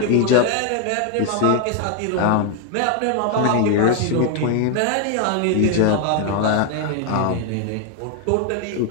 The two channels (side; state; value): both; different; correlation 0.01